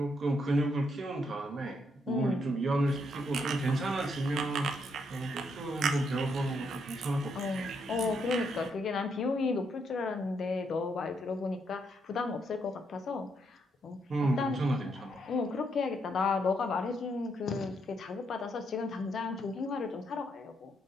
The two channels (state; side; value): normal; both; correlation 0.76